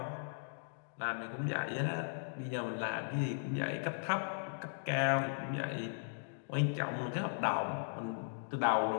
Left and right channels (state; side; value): silent; right; digital silence